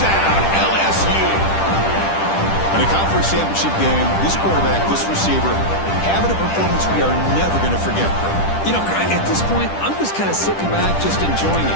LSU. In a conference championship game, this quarterback, this receiver, having a performance we are never going to forget. You know, at this point, I'm just kind of sitting back, just enjoying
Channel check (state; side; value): late; right; 10 ms